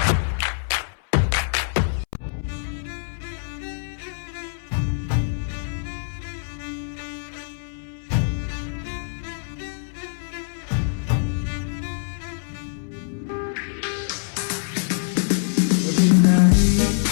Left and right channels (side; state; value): right; silent; 61 dB below the other